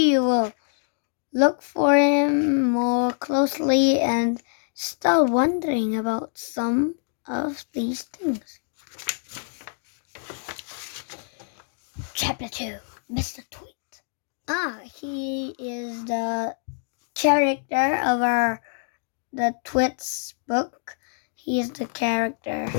will look for him more closely and start wondering about some of these things. Chapter 2, Mr. Tweet. He is the character of the Twits book. He's the character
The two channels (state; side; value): silent; right; 61 dB below the other